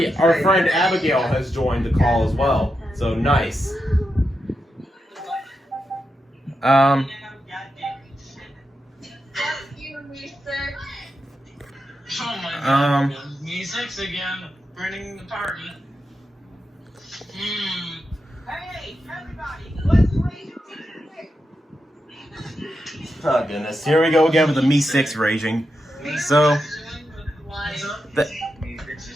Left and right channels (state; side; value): normal; both; correlation 0.87